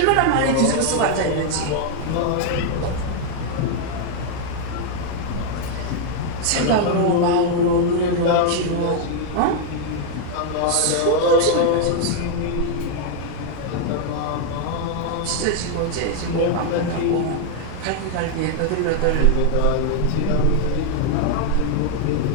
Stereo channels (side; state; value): both; different; correlation 0.00